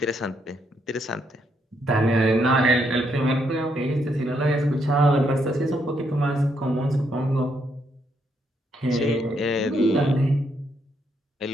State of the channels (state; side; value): normal; both; correlation 0.75